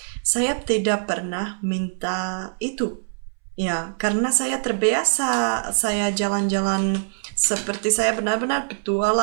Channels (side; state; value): left; silent; 63 dB below the other